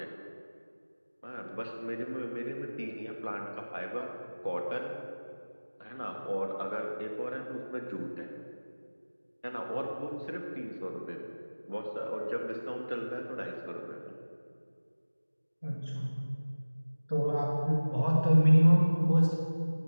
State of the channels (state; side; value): inverted; both; correlation -1.00